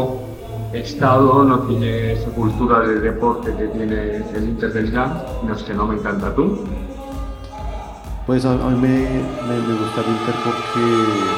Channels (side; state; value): both; identical; correlation 1.00